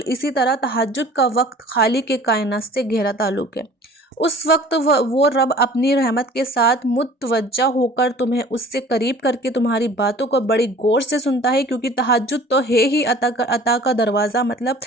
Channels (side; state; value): both; normal; correlation 0.47